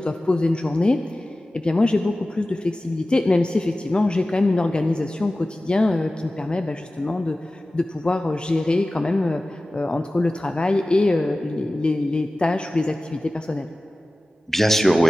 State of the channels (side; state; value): both; normal; correlation 0.96